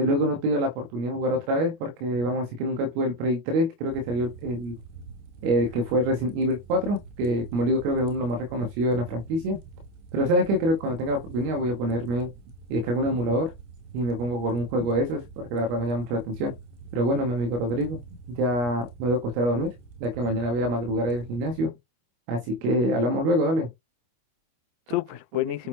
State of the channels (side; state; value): left; late; 25 ms